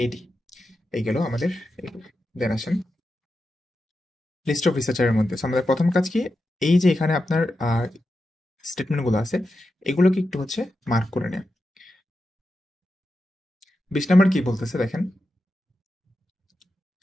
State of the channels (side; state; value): both; normal; correlation 0.89